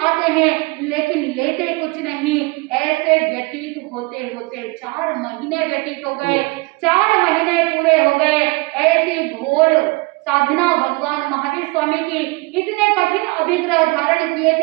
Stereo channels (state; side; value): quieter; left; 25.9 dB